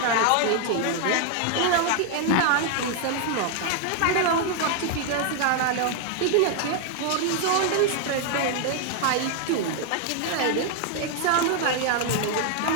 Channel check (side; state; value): both; different; correlation 0.00